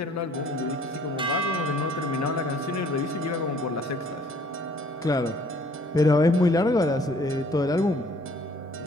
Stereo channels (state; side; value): normal; both; correlation 0.58